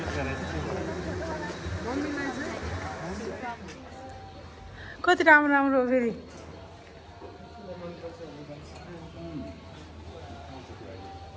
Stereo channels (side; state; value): both; identical; correlation 1.00